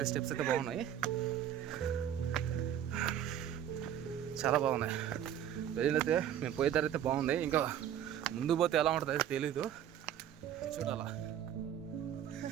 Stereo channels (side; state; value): left; quieter; 10.2 dB